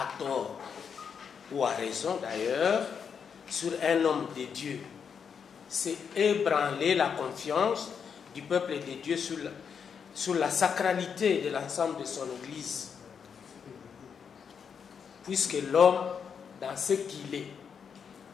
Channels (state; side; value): quieter; right; 6.8 dB